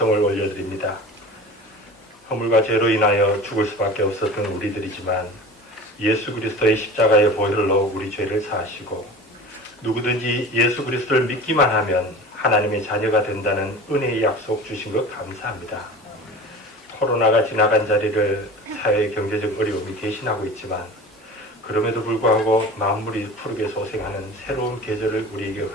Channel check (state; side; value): normal; both; correlation 0.36